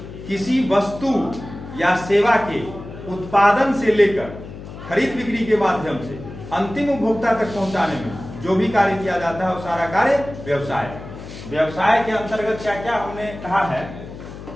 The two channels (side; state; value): left; noise; hum, 13 dB below the sound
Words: किसी वस्तु या सेवा के उत्पादन से लेकर खरीद बिक्री के माध्यम से अंतिम उपभोक्ता तक पहुंचाने में जो भी कार्य किया जाता है वो सारा कार्य व्यवसाय है। व्यवसाय के अंतर्गत क्या क्या हमने कहा है?